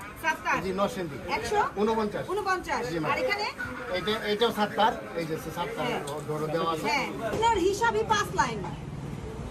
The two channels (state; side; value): identical; both; correlation 1.00